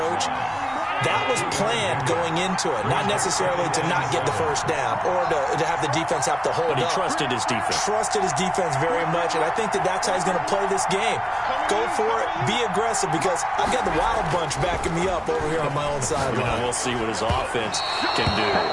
That was planned going into it, not necessarily to not get the first down or to have the defense have to hold up. But he trusted his defense. Trusted his defense very much, and I think that's how he's going to play this game. Go for it, be aggressive, because I've got the Wild Bunch backing me up over here on my own sideline. We'll see what his offense can do.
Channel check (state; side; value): identical; both; correlation 1.00